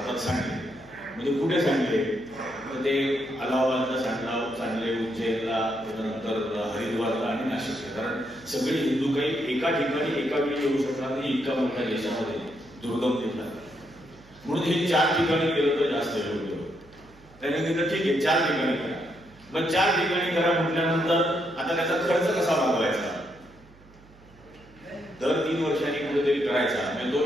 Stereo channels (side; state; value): right; noise; hum, 25 dB below the sound